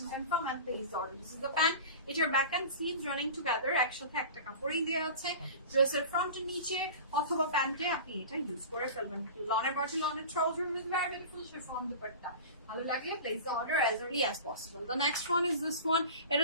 confirm and place order. This is the pant. এটার back and sleeves running together একসাথে একটা কাপড়ই দেওয়া আছে। ড্রেসের ফ্রন্টের নিচে অথবা প্যান্টে আপনি এটা ইউজ করে ফেলবেন। লনের বডি, লনের trouser with very beautiful chiffon dupatta. ভালো লাগলে place the order as early as possible. The next one is this one.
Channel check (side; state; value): both; inverted; correlation -0.35